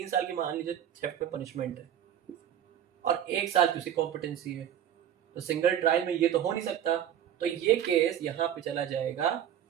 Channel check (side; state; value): left; quieter; 10.2 dB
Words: साल की मान लीजिए थेफ्ट में पनिशमेंट है और 1 साल की उसकी कॉम्पिटेंसी है, तो सिंगल ट्रायल में ये तो हो नहीं सकता। तो ये केस यहाँ पे चला जाएगा